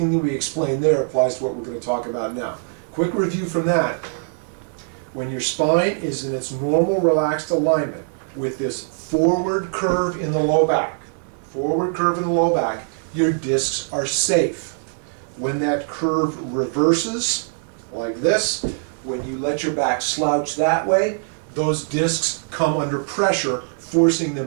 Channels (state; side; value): silent; left; 59 dB below the other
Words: that we explain there applies to what we're going to talk about now. Quick review from that. When your spine is in its normal relaxed alignment with this forward curve in the low back, your discs are safe. When that curve reverses, like this, when you let your back slouch that way, those discs come under pressure, forcing